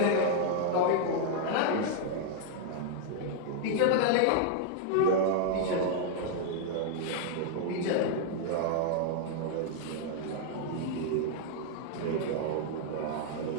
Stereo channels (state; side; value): different; both; correlation 0.00